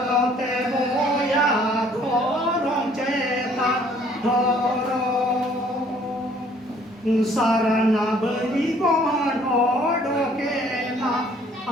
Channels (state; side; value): normal; both; correlation 0.59